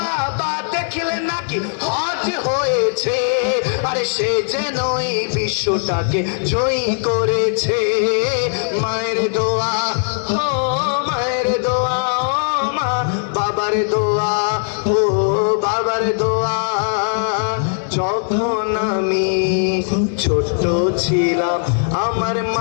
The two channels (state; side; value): silent; right; digital silence